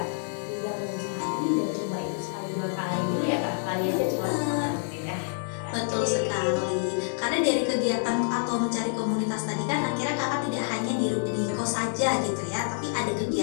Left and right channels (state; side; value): silent; right; digital silence